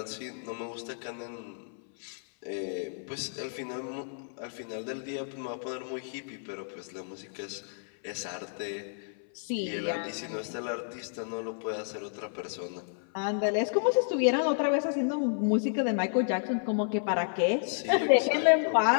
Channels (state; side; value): silent; right; 57 dB below the other